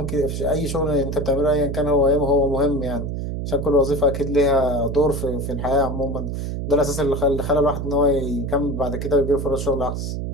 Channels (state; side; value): noise; right; hum, 4 dB below the sound